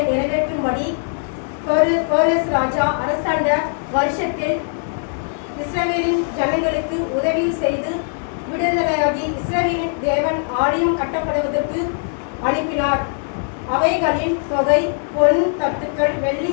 நிறைவேற்றும்படி கோரஸ் ராஜா அரசாண்ட வருஷத்தில் இஸ்ரவேலின் ஜனங்களுக்கு உதவி செய்து விடுதலையாகி இஸ்ரவேலின் தேவன் ஆலயம் கட்டப்படுவதற்கு அனுப்பினார். அவைகளின் தொகை பொன் தட்டுக்கள் வெள்ளி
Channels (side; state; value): right; silent; 66 dB below the other